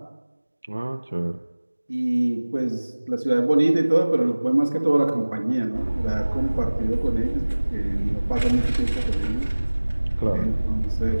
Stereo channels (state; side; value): inverted; both; correlation -1.00